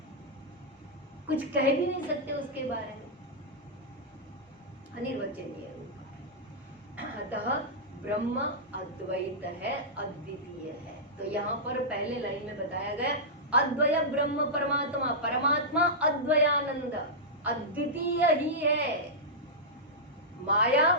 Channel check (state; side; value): normal; both; correlation -0.11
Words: कुछ कह भी नहीं सकते उसके बारे में, अनिर्वचनीय रूपा। अतः ब्रह्म अद्वैत है, अद्वितीय है। तो यहाँ पर पहले लाइन में बताया गया अद्वय ब्रह्म परमात्मा, परमात्मा अद्वयानंद, अद्वितीय ही है, माया